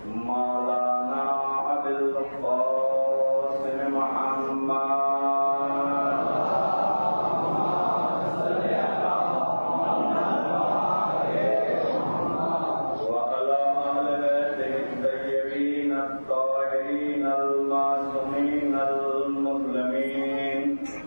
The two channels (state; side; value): inverted; both; correlation -1.00